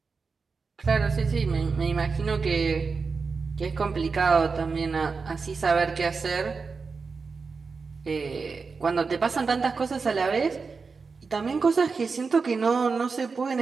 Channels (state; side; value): quieter; left; 4.8 dB